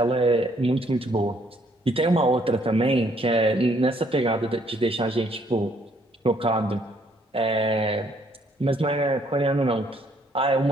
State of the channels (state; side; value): normal; both; correlation 0.67